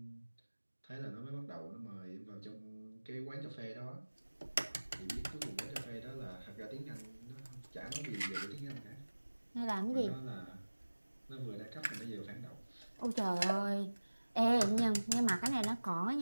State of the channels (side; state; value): both; inverted; correlation -1.00